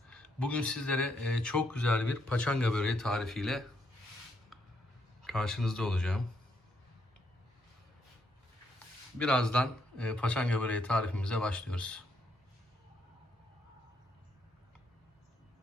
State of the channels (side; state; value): both; normal; correlation 0.75